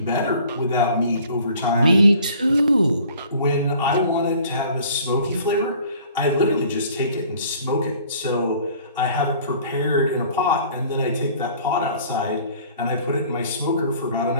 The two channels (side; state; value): both; inverted; correlation -0.52